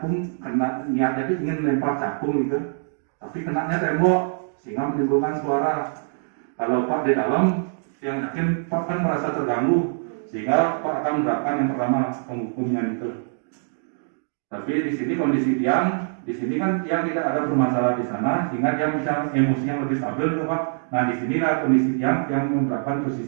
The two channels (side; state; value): left; silent; digital silence